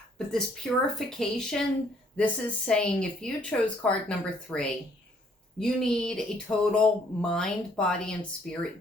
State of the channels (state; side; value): normal; both; correlation 0.64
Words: But this purification, this is saying if you chose card number 3, you need a total mind, body, and